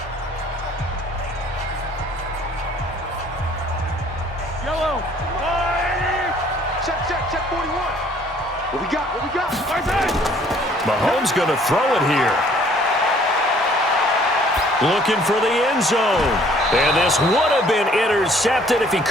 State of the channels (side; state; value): both; normal; correlation 0.58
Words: Mahomes going to throw it here. Looking for the end zone. And this would have been intercepted if he